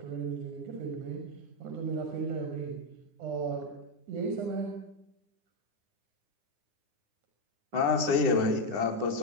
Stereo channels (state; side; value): late; left; 9.8 ms